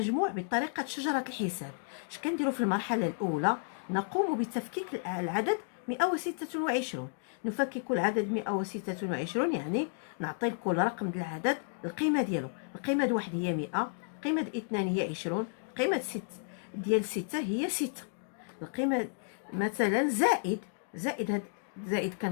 بطريقة شجرة الحساب، اش كنديروا في المرحلة الأولى؟ نقوم بتفكيك العدد 126. نفكك العدد 126، يعني نعطي لكل رقم ديال العدد القيمة ديالو. القيمة ديال واحد هي 100، القيمة ديال اثنان هي 20، القيمة ديال 6 هي 6. القيمة مثلا زائد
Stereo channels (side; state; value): right; silent; digital silence